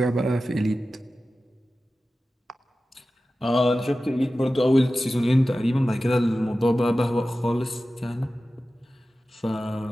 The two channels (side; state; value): both; normal; correlation 0.94